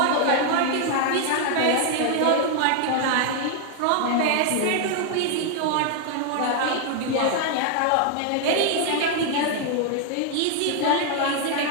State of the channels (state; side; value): different; both; correlation 0.00